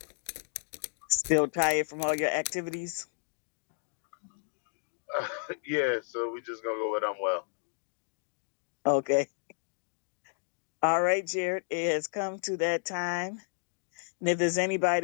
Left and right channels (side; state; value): right; silent; digital silence